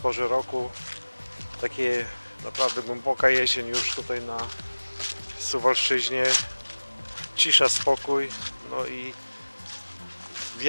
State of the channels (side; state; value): both; inverted; correlation -1.00